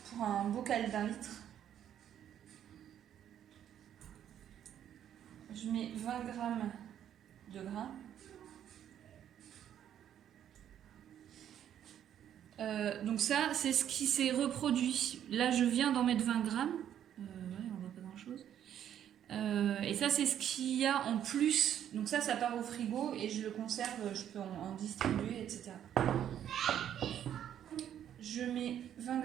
pour un bocal d'1 litre, je mets 20 g de grains. Donc ça, c'est ce qui s'est reproduit. Là, je viens d'en mettre 20 grammes. Ouais, on voit pas grand-chose. Et ça, c'est ce qu'il y a en plus. Donc ça part au frigo et je le conserve. Je peux en distribuer, etc. Je mets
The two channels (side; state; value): left; quieter; 10.2 dB